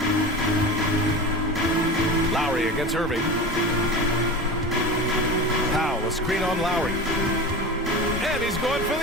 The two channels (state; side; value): normal; both; correlation 0.30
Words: Lowry against Irving. Powell, a screen on Lowry. And he's going for